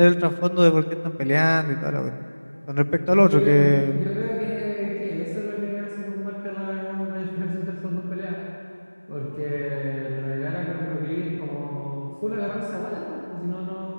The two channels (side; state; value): both; inverted; correlation -1.00